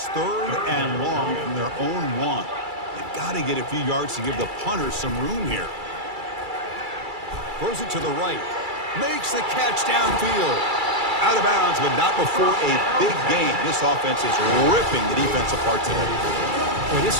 3rd and long from their own 1. They've got to get a few yards to give the punters some room here. Throws it to the right. Makes the catch downfield. Out of bounds, but not before a big gain. This offense is ripping the defense apart today. Boy, this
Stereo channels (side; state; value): left; late; 2.3 ms